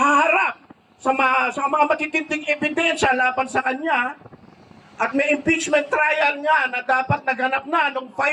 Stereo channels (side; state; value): both; identical; correlation 1.00